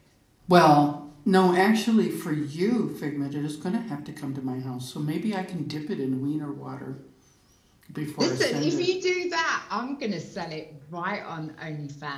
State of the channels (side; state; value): both; identical; correlation 1.00